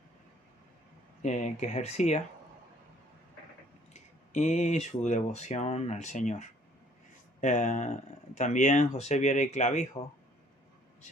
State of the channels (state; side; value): normal; both; correlation 0.59